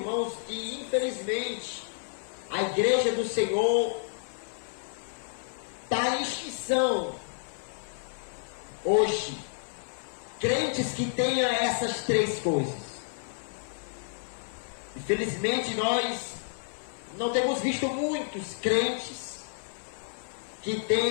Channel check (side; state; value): right; silent; 58 dB below the other